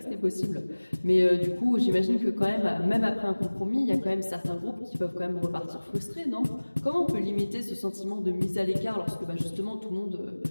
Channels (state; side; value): inverted; both; correlation -1.00